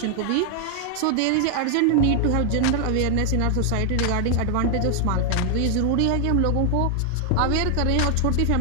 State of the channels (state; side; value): different; both; correlation 0.00